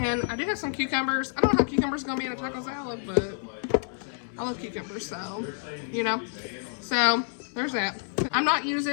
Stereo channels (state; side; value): silent; right; 59 dB below the other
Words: I do have some cucumbers. I don't know how cucumbers are gonna be in a taco salad, but I love cucumbers, so so there's that. I'm not